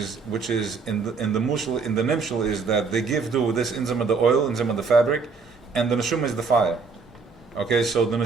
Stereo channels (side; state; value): left; quieter; 4.8 dB